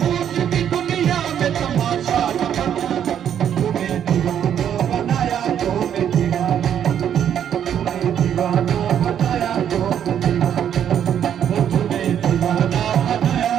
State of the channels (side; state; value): left; quieter; 9.4 dB